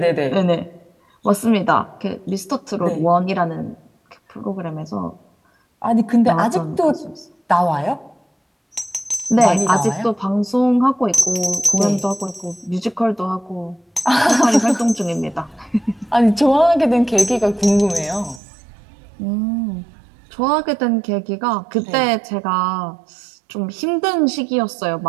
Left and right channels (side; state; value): left; drops out; at 18.4 s